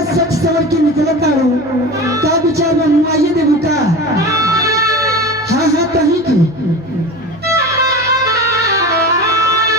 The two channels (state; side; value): noise; right; hum, 24 dB below the sound